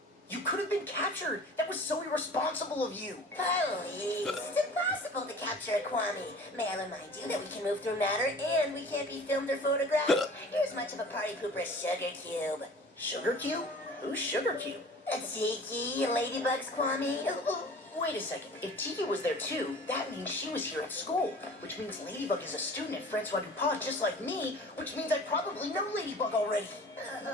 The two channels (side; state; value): both; normal; correlation 0.44